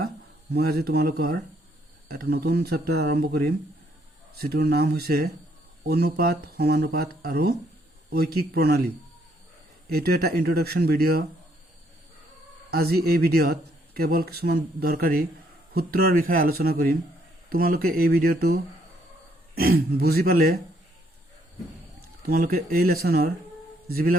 মই আজি তোমালোকৰ এটা নতুন চেপ্টাৰ আৰম্ভ কৰিম, যিটোৰ নাম হৈছে অনুপাত, সমানুপাত আৰু ঐকিক প্ৰণালী। এইটো এটা ইন্ট্ৰডাকশ্যন ভিডিঅ'। আজি এই ভিডিঅ'ত কেৱল কিছুমান দৰকাৰী সূত্ৰৰ বিষয়ে আলোচনা কৰিম। তোমালোকে এই ভিডিঅ'টো বুজি পালে তোমালোকে এই লেসনৰ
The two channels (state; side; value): normal; both; correlation 0.69